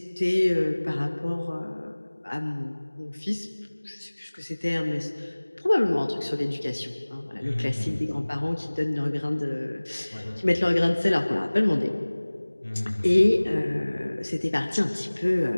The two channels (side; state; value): both; inverted; correlation -1.00